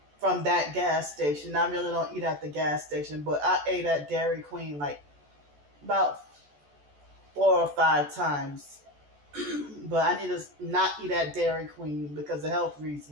from that gas station. I really don't eat at the gas station, but I ate at Dairy Queen like about 4 or 5 times. But I need to not eat at Dairy Queen because of health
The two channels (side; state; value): left; late; 14 ms